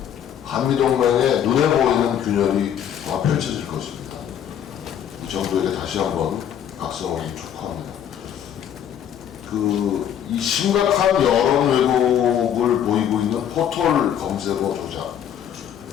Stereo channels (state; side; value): quieter; right; 9.5 dB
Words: 한미동맹의 눈에 보이는 균열이 펼쳐질 것입니다. 이 정부에게 다시 한번 각성을 촉구합니다. 이 심각한 여론 왜곡을 보이고 있는 포털 검색어 조작,